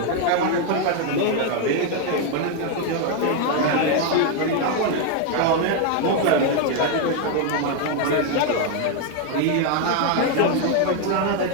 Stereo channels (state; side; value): different; both; correlation 0.01